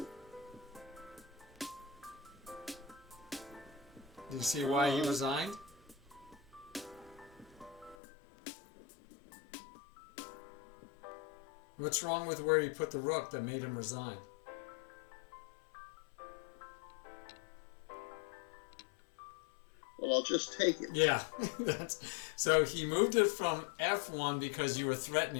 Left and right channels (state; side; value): drops out; right; at 8.0 s